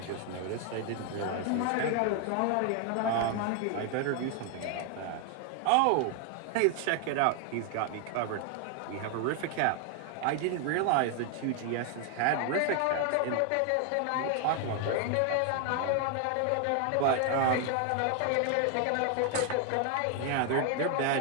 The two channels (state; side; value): different; both; correlation 0.00